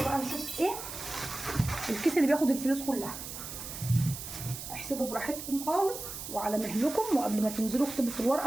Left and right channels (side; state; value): right; noise; hiss, 9 dB below the sound